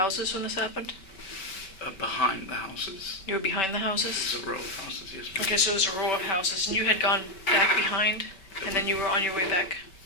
when this happened? Behind the houses. You were behind the houses? There's a row of houses, yes, ma'am. Okay, so it was a row of houses, and you had gone back behind, and then you were on your way back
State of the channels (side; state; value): right; late; 5.2 ms